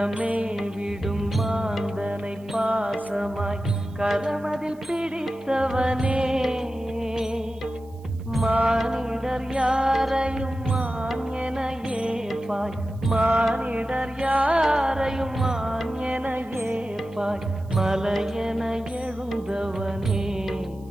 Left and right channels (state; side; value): noise; right; hiss, 30 dB below the sound